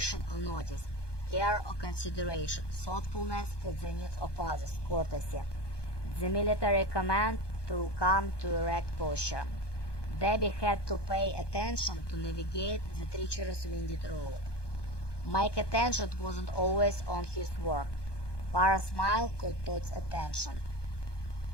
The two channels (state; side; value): late; right; 1.2 ms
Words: or notice. Care or consideration. Thoughtfulness for the needs of others. Courtesy. The military command to come to erect posture. Debbie had to pay attention to navigate the treacherous winded road. Mike's attention wasn't always on his work. Para's smile caught Todd's attention.